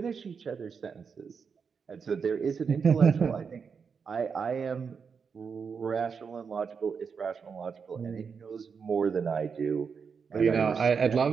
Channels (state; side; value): quieter; left; 6.0 dB